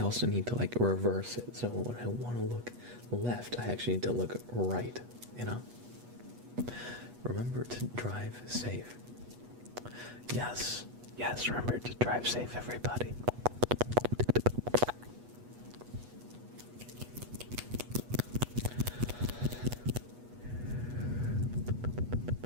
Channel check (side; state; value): left; late; 8.2 ms